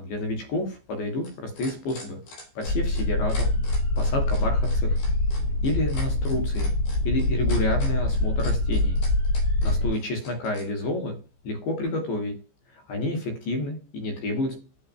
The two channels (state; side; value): late; right; 15 ms